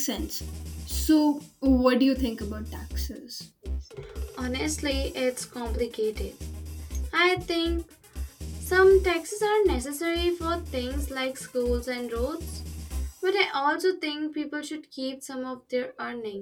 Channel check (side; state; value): both; identical; correlation 1.00